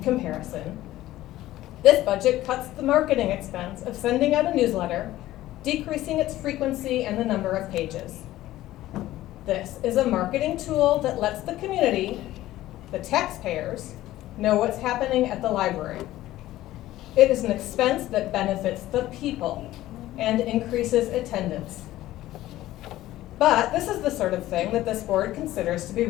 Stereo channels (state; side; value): quieter; right; 15.3 dB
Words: this budget cuts the marketing expense of sending out a newsletter, decreasing its frequency and the number of pages. This is a marketing tool that lets the community, the taxpayers, know what's happening at the library. It is an expense that benefits the people and increases attendance. But this is the sort of thing that this board considers to be